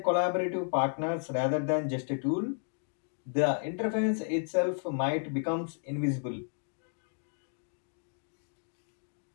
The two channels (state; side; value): silent; right; digital silence